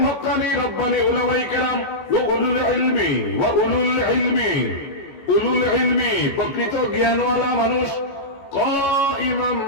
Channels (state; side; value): late; right; 14 ms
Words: হক্কানি রব্বানি উলামায়ে কেরাম ওয়া উলুল ইলমি প্রকৃত জ্ঞানওয়ালা মানুষ। কাইমান